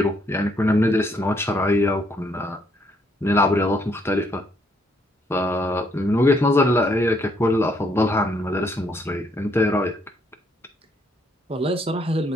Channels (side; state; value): both; normal; correlation 0.71